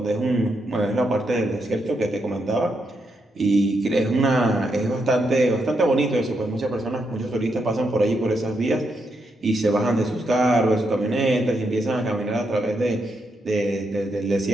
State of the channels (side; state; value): both; normal; correlation 0.81